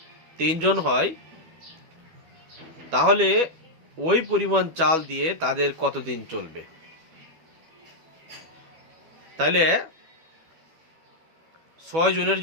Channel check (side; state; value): left; late; 12 ms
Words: 3 জন হয়, তাহলে ওই পরিমাণ চাল দিয়ে তাদের কতদিন চলবে? তাহলে 6 জনের